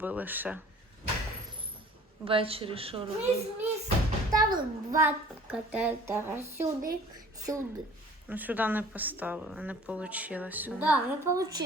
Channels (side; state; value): both; normal; correlation 0.50